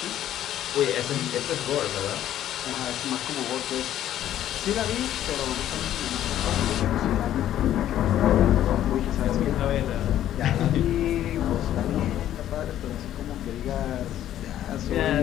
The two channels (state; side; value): quieter; right; 11.9 dB